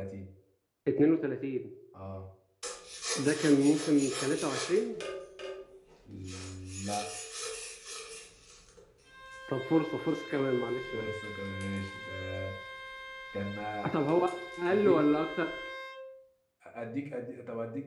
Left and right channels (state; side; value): identical; both; correlation 1.00